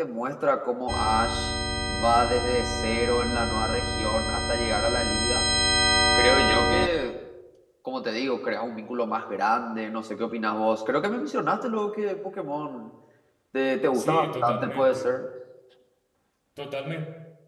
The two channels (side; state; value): both; identical; correlation 1.00